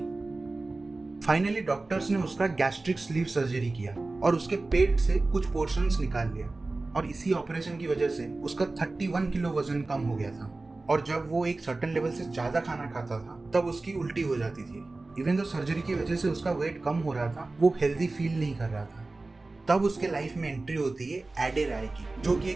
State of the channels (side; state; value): left; quieter; 3.3 dB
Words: फाइनली डॉक्टर्स ने उसका गैस्ट्रिक स्लीव सर्जरी किया और उसके पेट से कुछ पोर्शंस निकाल लिया। और इसी ऑपरेशन की वजह से उसका 31 किलो वजन कम हो गया था। और जब वो एक सर्टेन लेवल से ज्यादा खाना खाता था तब उसकी उल्टी हो जाती थी। इवन तो सर्जरी की वजह से उसका वेट कम हो रहा था, वो हेल्दी फील नहीं कर रहा था। तब उसके लाइफ में एंट्री होती है एडे राय की, जो कि